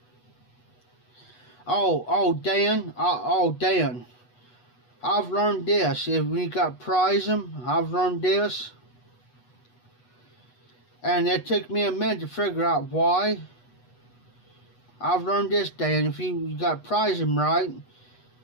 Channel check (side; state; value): right; late; 8.2 ms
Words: Dan, I've learned this. If we got prize them, I've learned this. And it took me a minute to figure out why. I've learned this, Dan. If you got prize them right,